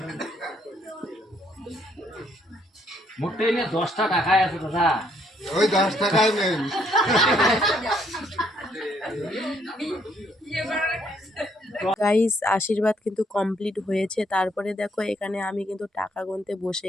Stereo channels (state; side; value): normal; both; correlation 0.69